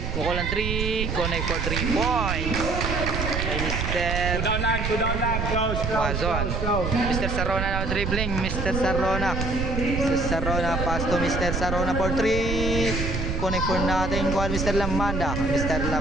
Mukulan 3, connect for 3 points. Kay Mr. Two down lang, close. Wazon. Mr. Sarona now dribbling. Mr. Sarona, pass to Mr. Sarona for 3. Connect for natin. Kuhan Mr. Lamanda. Mr.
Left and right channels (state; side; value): noise; right; rumble, 2 dB below the sound